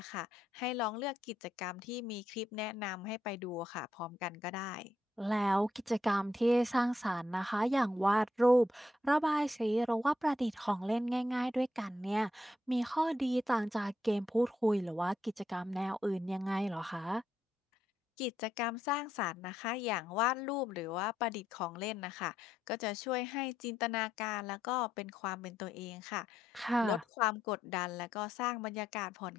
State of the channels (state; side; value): normal; both; correlation 0.78